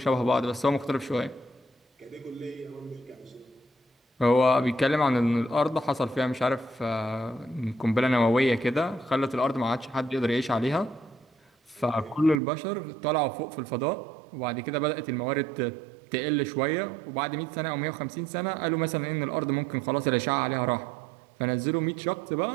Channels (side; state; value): left; drops out; at 12.4 s